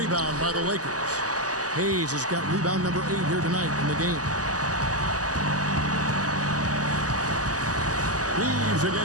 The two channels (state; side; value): late; left; 0.67 ms